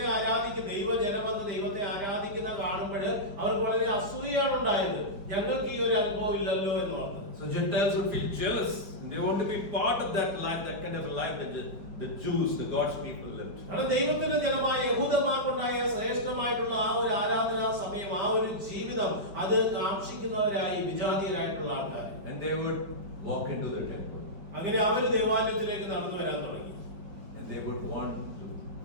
ആരാധിക്കുന്ന ദൈവജനം വന്ന് ദൈവത്തെ ആരാധിക്കുന്ന കാണുമ്പോൾ അവർക്ക് വളരെ അസൂയാണ് ഉണ്ടായത്. ഞങ്ങൾക്ക് ഈ ഒരു അനുഭവം ഇല്ലല്ലോ എന്ന് ഓർത്തത്. So Gentiles would feel jealous and they want to be part of that life, that kind of a life that the Jews, the God's people lived. കാരണം ദൈവത്തിന്റെ ജനമായ യഹൂദന്മാർക്കുണ്ടായ ശ്രേഷ്ഠമായിട്ടുള്ള ആ ഒരു ആരാധനാ സമയം, ആ ഒരു ജീവിതം അത് കാക്ഷിക്കുന്നവരായി വിജാതീയരായിട്ടുള്ള ആൾക്കാർ. And they would walk into the temple. അങ്ങനെ അവർ ദേവാലയത്തിലേക്ക് നടന്നു വരാൻ തുടങ്ങി. And they would want to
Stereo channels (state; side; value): late; left; 5.1 ms